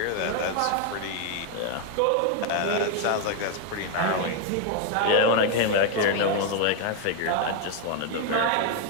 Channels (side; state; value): both; different; correlation 0.01